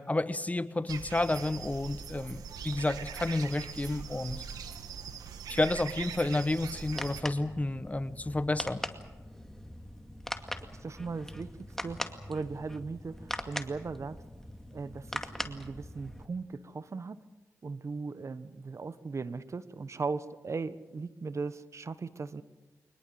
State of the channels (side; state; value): both; normal; correlation 0.87